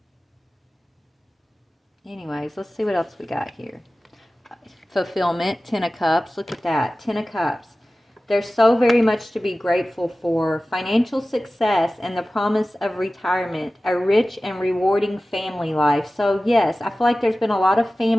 Anyways, let's see what else we got here. Fulfillment, 10 of Cups. Look at that, 10 of Cups. There's so very much to be grateful for. Financial success and the promise of retirement. A rich and rewarding family life. So yes, I feel like there's been a lot of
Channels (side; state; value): both; normal; correlation 0.96